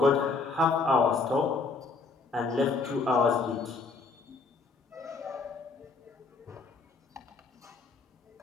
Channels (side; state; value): right; quieter; 4.2 dB